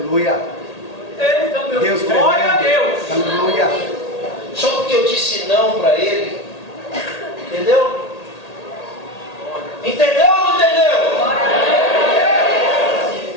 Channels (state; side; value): late; right; 1.8 ms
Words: Deus, glória a Deus. Aleluia. Só porque eu disse não para ele. Entendeu? Entendeu ou não entendeu?